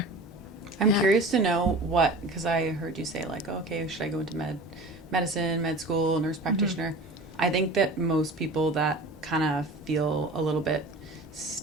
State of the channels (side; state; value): both; normal; correlation 0.38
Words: I'm curious to know because I heard you say like, oh, okay, should I go into medicine, med school, nurse practitioner? I think that most people that kind of feel a little bit